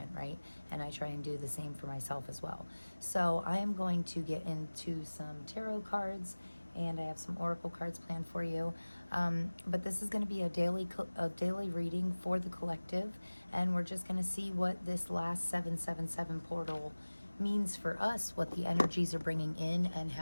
right? And I try and do the same for myself as well. So I am going to get into some tarot cards, and I have some oracle cards planned for you. But this is going to be a daily reading for the collective, and we're just going to see what this last 777 portal means for us, what the energies are bringing in, and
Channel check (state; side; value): inverted; both; correlation -1.00